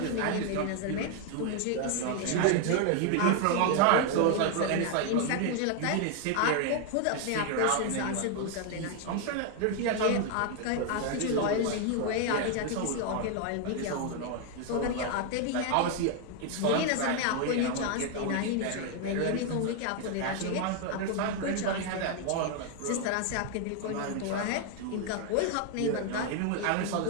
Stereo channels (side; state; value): both; different; correlation 0.00